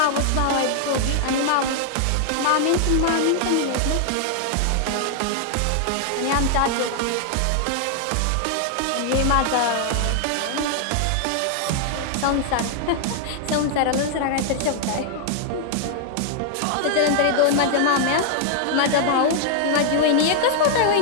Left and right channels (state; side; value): different; both; correlation 0.00